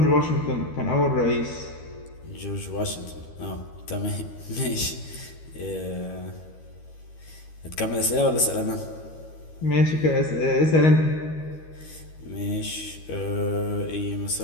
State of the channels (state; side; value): late; right; 13 ms